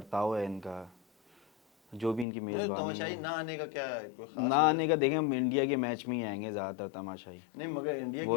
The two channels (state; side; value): drops out; right; at 2.2 s